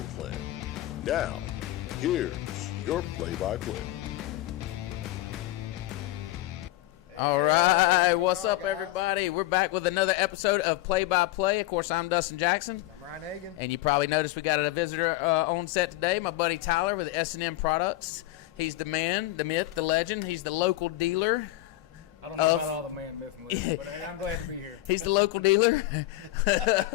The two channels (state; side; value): quieter; right; 16.4 dB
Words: plan. Now, here's your play-by-play. All right, what's up, everybody? We're back with another episode of Play-by-Play. Of course, I'm Dustin Jackson. I'm Ryan Hagan. And you probably noticed we got a visitor on set today, my buddy Tyler with S&N Products. He's the man, the myth, the legend. He's the local dealer. I don't know about all the man, myth, and legend, but hey, I'm glad to be here. He's the local dealer